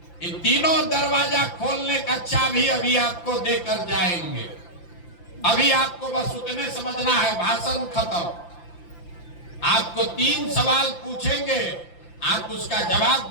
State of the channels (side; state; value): right; late; 5.9 ms